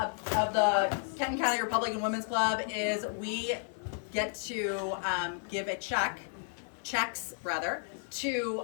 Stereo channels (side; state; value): right; silent; 56 dB below the other